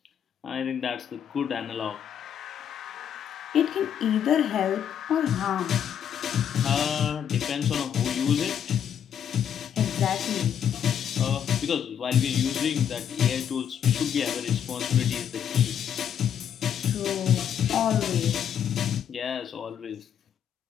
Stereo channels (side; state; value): right; quieter; 8.9 dB